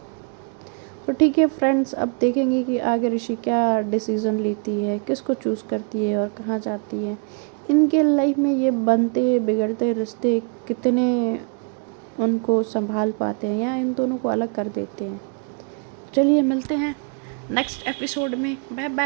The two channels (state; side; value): quieter; left; 37.4 dB